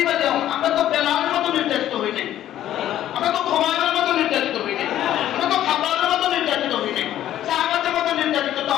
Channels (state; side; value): quieter; right; 12.3 dB